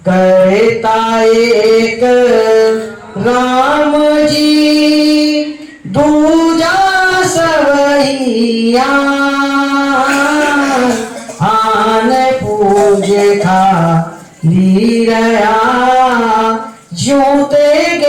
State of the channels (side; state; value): both; identical; correlation 1.00